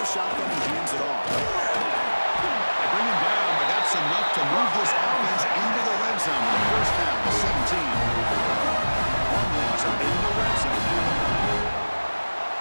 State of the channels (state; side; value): inverted; both; correlation -1.00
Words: shotgun, he hands it off. They bring him down, but that's enough to move this offense into the red zone. The first down, the 17. Hornets are in the red zone now.